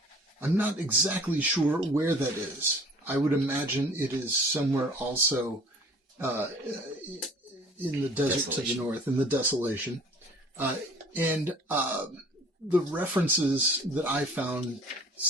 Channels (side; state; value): both; normal; correlation 0.49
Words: I'm not exactly sure where that is. I would imagine it is somewhere also in the desert to the north, in the Desolation. The references that I found